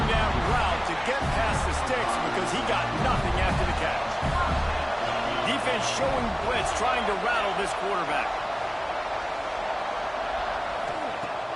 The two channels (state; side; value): identical; both; correlation 1.00